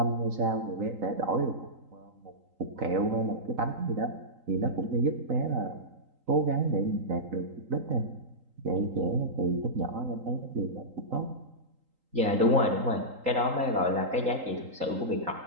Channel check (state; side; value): late; left; 3.8 ms